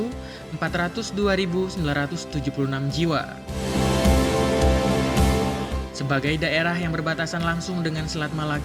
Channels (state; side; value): identical; both; correlation 1.00